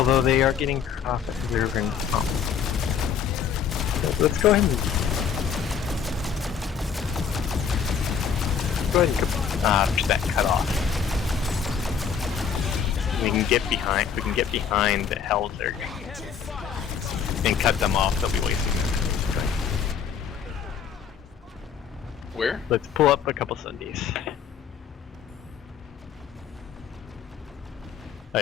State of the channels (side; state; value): right; quieter; 7.2 dB